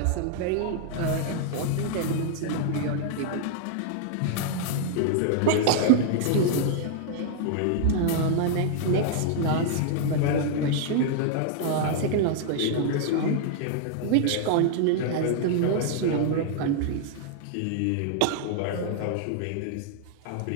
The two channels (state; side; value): different; both; correlation 0.00